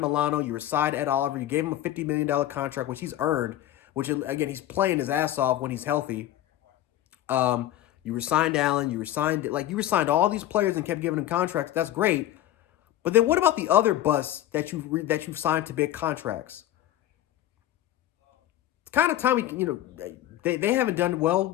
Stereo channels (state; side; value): quieter; right; 13.2 dB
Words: Milano, you resigned Ed Oliver. You gave him a $50 million contract, which he's earned, which, again, he's playing his ass off when he's healthy. You resigned Allen, you resigned all these players and kept giving them contracts. That's great. But then what about the other busts that you've signed to big contracts? It's kind of time they haven't done